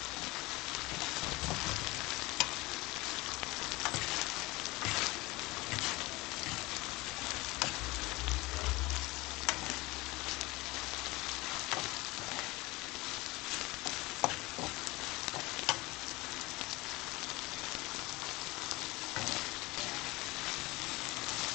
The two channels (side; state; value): right; quieter; 21.9 dB